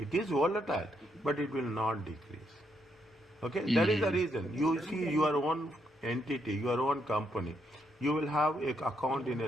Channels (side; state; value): both; normal; correlation 0.77